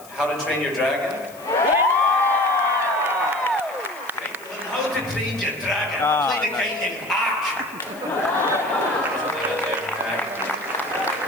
to Train Your Dragon? How to Train Your Dragon. Play the guy named Ark.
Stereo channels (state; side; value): noise; left; hiss, 22 dB below the sound